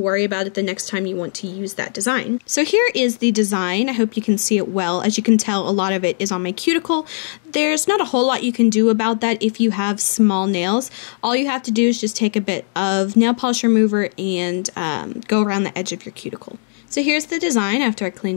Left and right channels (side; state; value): right; silent; digital silence